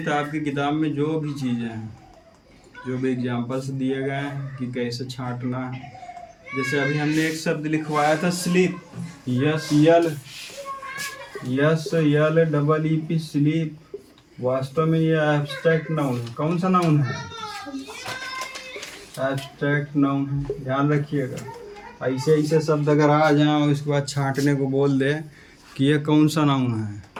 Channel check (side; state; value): both; identical; correlation 1.00